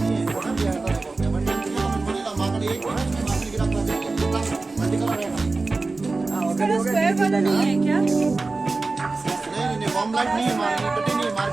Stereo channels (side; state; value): left; quieter; 3.6 dB